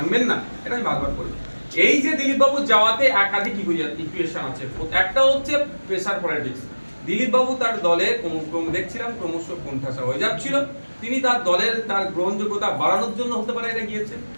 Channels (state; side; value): inverted; both; correlation -1.00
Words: না, এটা আমি বারবার বলি। এই যে দিলীপ বাবু যাওয়াতে একাধিক ইকুয়েশন আছে। একটা হচ্ছে প্রেসার পলিটিক্স। দিলীপ বাবু তার দলে দেখছিলাম ক্রমশ কোণঠাসা হয়ে যাচ্ছিল। তিনি তার দলের তার গ্রহণযোগ্যতা বাড়ানোর জন্য হতে পারে এটা গিয়েছেন,